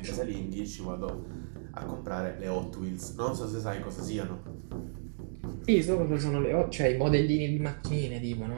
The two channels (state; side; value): silent; left; digital silence